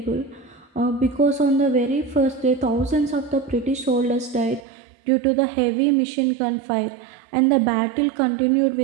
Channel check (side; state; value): left; drops out; at 4.6 s